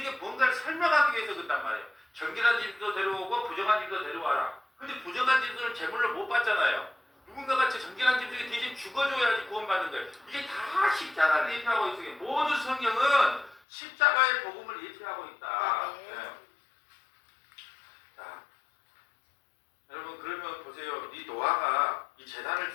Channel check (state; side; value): drops out; right; at 13.6 s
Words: 뭔가를 설명하기 위해서 그런단 말이에요. 정결한 짐승도 데려오고 부정한 짐승도 데려와라. 근데 부정한 짐승을 제물로 못 받잖아요. 누군가가 정결한 짐승이 대신 죽어줘야지 구원받는 거예요. 이게 다 십자가를 예표하고 있어요. 모든 성경은 십자가의 복음을 예표하고 있다. 네. 자, 여러분 그러면 보세요. 이 노아가 이 제단을